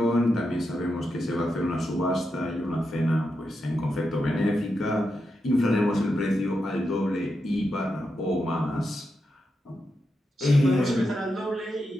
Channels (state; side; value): normal; both; correlation 0.87